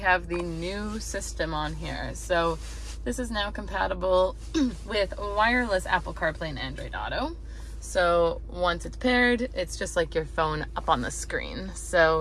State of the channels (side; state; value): both; identical; correlation 1.00